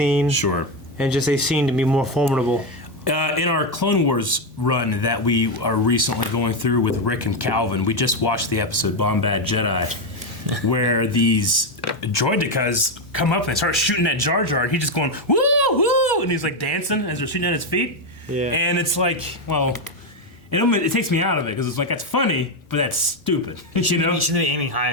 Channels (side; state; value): both; normal; correlation 0.07